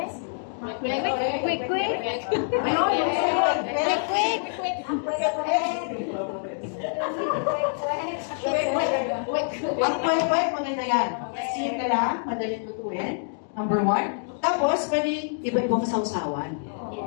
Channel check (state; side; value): silent; right; digital silence